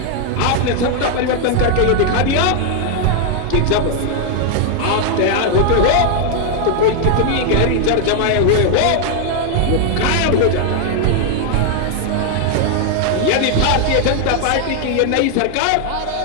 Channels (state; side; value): different; both; correlation 0.00